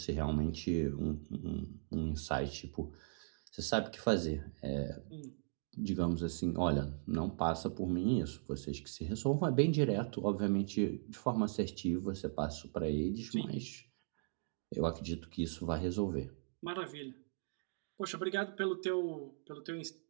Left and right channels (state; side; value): silent; left; digital silence